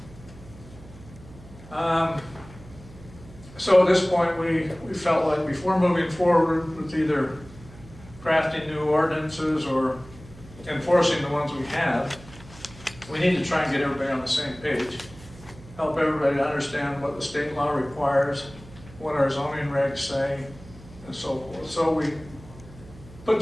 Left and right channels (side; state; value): right; noise; hum, 19 dB below the sound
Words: So at this point, we felt like before moving forward with either crafting new ordinances or enforcing the ones we have, we need to try and get everybody on the same page. Help everybody to understand what the state law requires, what our zoning regs say, and so forth. So we put